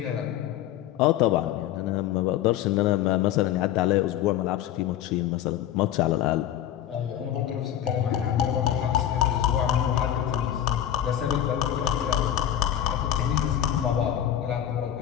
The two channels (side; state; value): right; quieter; 11.3 dB